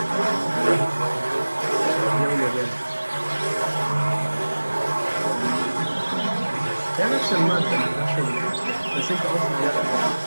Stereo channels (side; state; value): both; inverted; correlation -1.00